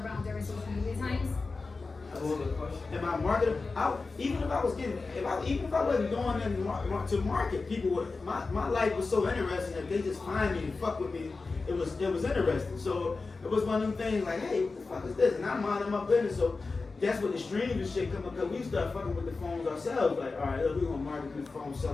during social media times? That's a good question. Am I marketable? Even if I wasn't doing it to market, people would. My life was so interesting that they just find me and fuck with me. It was interesting. So it was one of them things like, hey, what the fuck is this? And I'm minding my business. So that's when the streams and shit come up. Cause we start fucking with the phones ourselves. Like, all right, look, we gonna market these phones,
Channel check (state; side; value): quieter; right; 4.0 dB